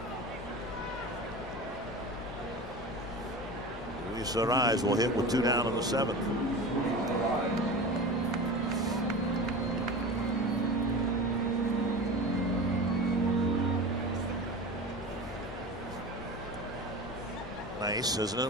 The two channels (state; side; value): noise; left; rumble, 18 dB below the sound